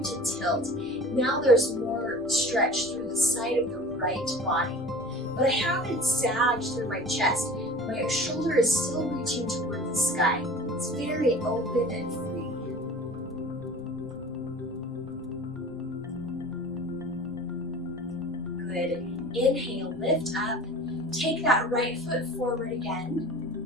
to tilt. Now there's more stretch through the side of the right body, but I haven't sagged through my chest. My shoulder is still reaching toward the sky. It's very open and free. Good. Inhale, lift up. Take that right foot forward again.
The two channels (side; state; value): left; noise; rumble, 24 dB below the sound